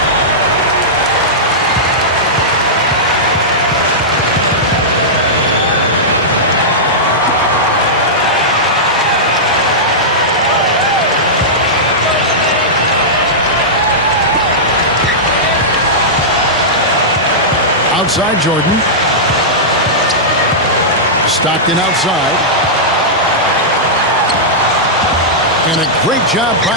Outside Jordan. Stockton outside. And a great job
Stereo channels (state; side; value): normal; both; correlation -0.12